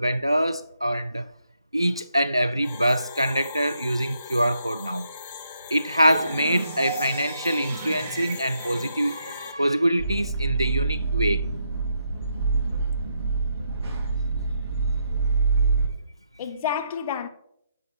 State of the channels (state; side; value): inverted; both; correlation -0.78